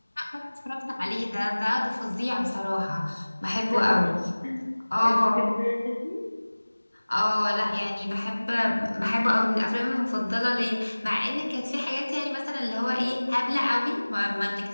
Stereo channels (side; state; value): both; inverted; correlation -1.00